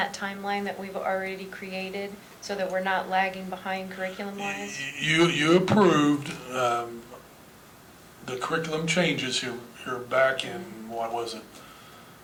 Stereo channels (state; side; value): identical; both; correlation 1.00